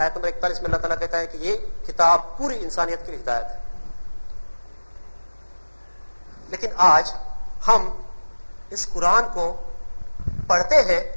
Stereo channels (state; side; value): inverted; both; correlation -1.00